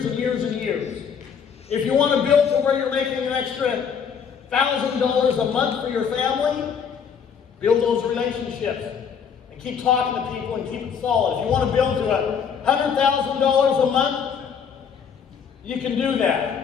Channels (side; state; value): right; quieter; 7.0 dB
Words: and years and years. If you want to build to where you're making an extra $1,000 a month for your family, build those relationships. And keep talking to people and keep it solid. If you want to build to $100,000 a month, you can do that.